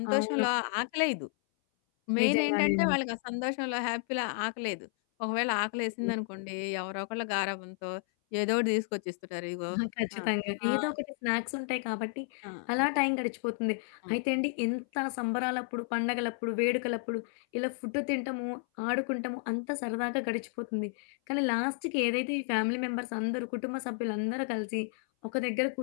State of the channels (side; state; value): right; silent; 56 dB below the other